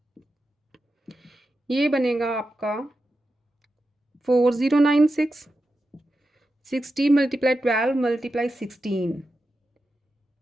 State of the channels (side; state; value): both; normal; correlation 0.90